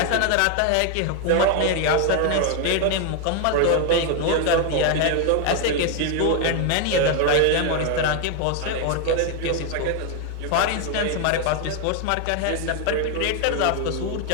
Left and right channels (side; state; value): both; different; correlation 0.01